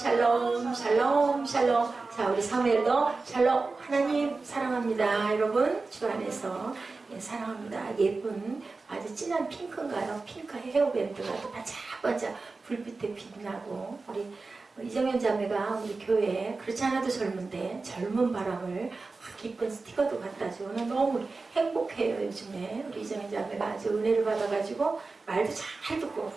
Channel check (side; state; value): left; quieter; 3.8 dB